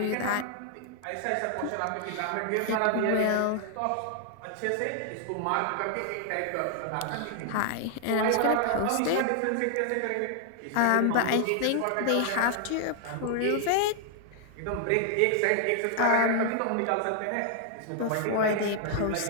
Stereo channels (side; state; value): both; different; correlation 0.00